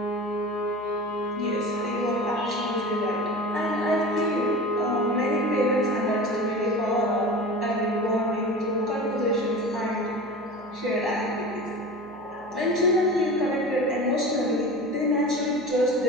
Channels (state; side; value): noise; right; hum, 26 dB below the sound